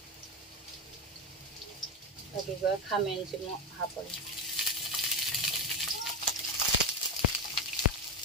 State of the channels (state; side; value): normal; both; correlation 0.13